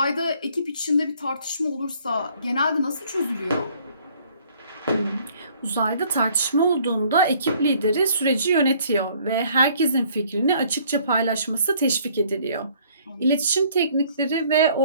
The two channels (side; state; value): both; inverted; correlation -0.60